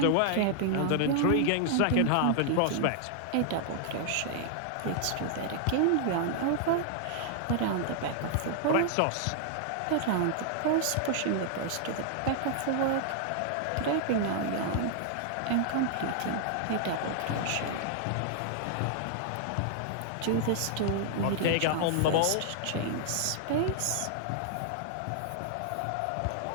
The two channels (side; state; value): both; different; correlation -0.01